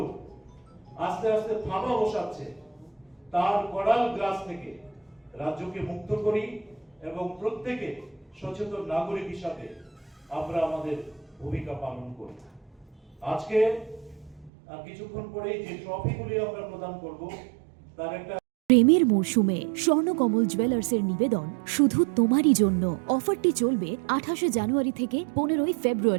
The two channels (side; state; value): left; drops out; at 14.5 s